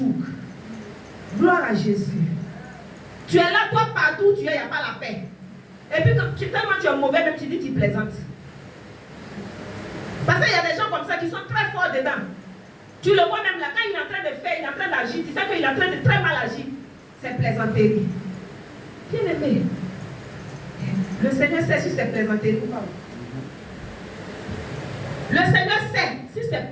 Gloire à Jésus. Tu es là, toi, partout où tu es, il n'y a pas la paix. Et puis, tellement tu es mauvais, même tu dis tu plaisantes. Parce qu'il y a des gens comme ça qui sont très forts dedans. Tu le vois même là, quand il est en train de faire, il est en train d'agir, tu sais qu'il est en train de très mal agir. C'est plaisanterie. Bien aimé. Le Seigneur sait si c'est plaisanterie ou pas. Le Seigneur sait si c'est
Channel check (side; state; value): both; identical; correlation 1.00